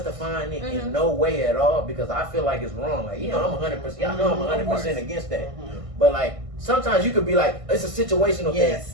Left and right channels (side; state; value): left; late; 1.5 ms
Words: it in no way at all because I feel like it's wrong. Like I'm 100%. Y'all know I'm 100% against that. But like sometimes you could be like it's a situational Yes,